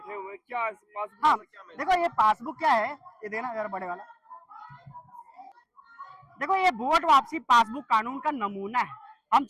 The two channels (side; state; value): both; identical; correlation 1.00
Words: हुए हैं, क्या पासबुक? हाँ, क्या देखो ये पासबुक क्या है, ये देना जरा बड़े वाला। देखो ये वोट वापसी पासबुक कानून का नमूना है। हम